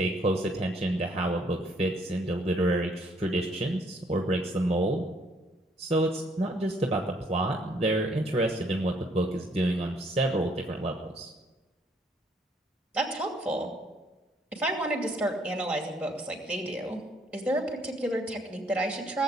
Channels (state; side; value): normal; both; correlation 0.66